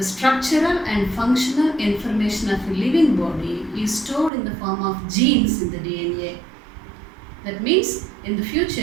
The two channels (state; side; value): drops out; left; at 4.3 s